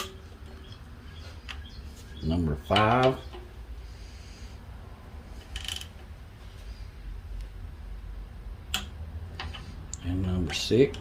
Number 5. And number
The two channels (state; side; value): identical; both; correlation 1.00